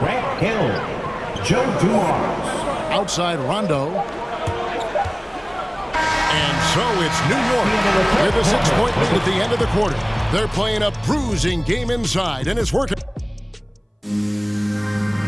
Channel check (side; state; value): both; identical; correlation 1.00